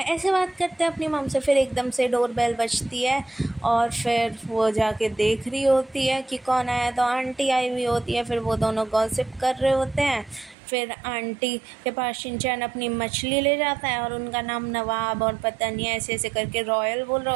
ऐसे बात करते हैं अपनी मॉम से। फिर एकदम से डोरबेल बजती है और फिर वो जाके देख रही होती है कि कौन आया। तो आंटी आई हुई होती है। फिर वो दोनों गॉसिप कर रहे होते हैं। फिर आंटी के पास शिनचैन अपनी मछली ले जाता है और उनका नाम नवाब और पता नहीं ऐसे ऐसे करके रॉयल बोल रहा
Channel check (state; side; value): drops out; left; at 10.6 s